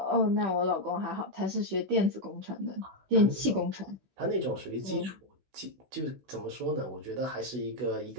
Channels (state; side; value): late; left; 16 ms